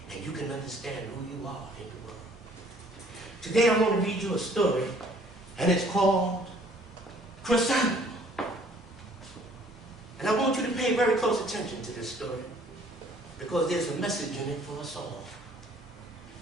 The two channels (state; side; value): normal; both; correlation 0.58